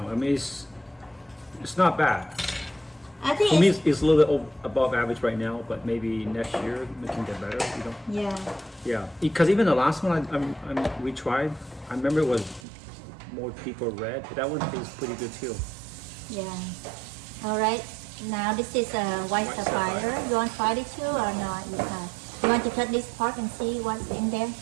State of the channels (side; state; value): left; drops out; at 12.6 s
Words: I mean, it's not bad. I think For me, it's a little bit above average right now, but maybe next year it can get better. You know? yeah. Yeah, because even the last one we tried, I remember it was more deeper red. That one tastes pretty good too. Yeah. All right. Now this is a white sapphire. You want to try it too or not? You want to cut this part and see what's in there?